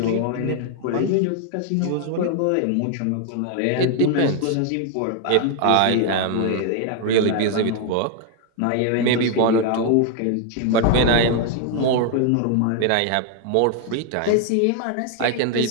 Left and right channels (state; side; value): different; both; correlation 0.00